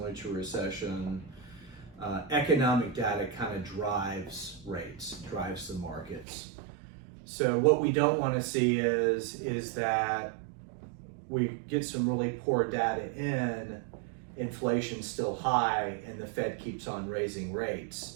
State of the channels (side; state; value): left; drops out; at 6.2 s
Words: to a recession, economic data kind of drives rates, drives the markets. So what we don't want to see is that we get some really poor data in, inflation's still high, and the Fed keeps on raising